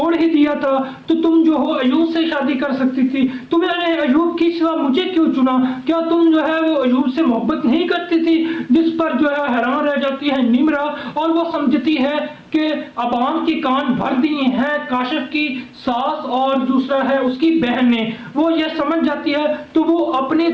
ही दिया था तो तुम जो हो अयूब से शादी कर सकती थी, तुमने अयूब की सिवा मुझे क्यों चुना? क्या तुम जो है वो अयूब से मोहब्बत नहीं करती थी? जिस पर जो है हैरान रह जाती है निम्रा, और वो समझती है कि अबान के कान भर दिए हैं काशिफ की सास और दूसरा है उसकी बहन ने। वो ये समझ जाती है तो वो अपनी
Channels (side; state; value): both; identical; correlation 1.00